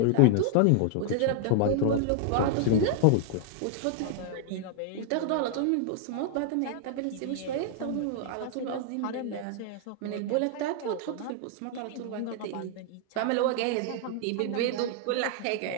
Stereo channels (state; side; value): different; both; correlation 0.00